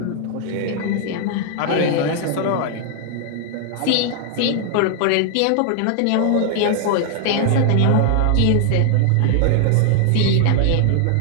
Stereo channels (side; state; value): both; different; correlation 0.00